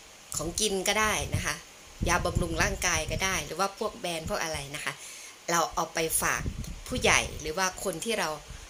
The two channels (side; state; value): both; identical; correlation 1.00